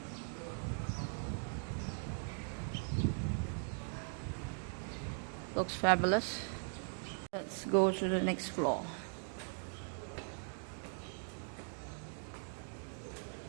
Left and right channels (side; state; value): left; silent; 51 dB below the other